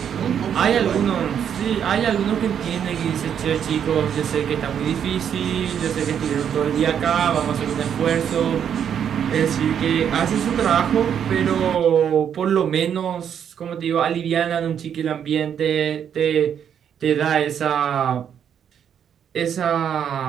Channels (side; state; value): left; quieter; 8.5 dB